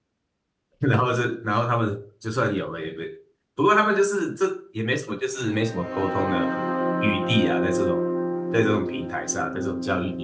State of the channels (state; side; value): identical; both; correlation 1.00